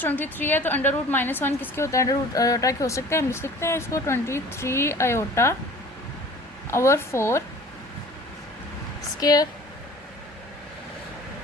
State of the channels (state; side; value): normal; both; correlation 0.45